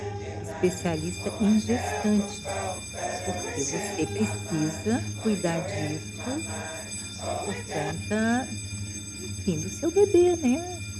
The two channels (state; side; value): identical; both; correlation 1.00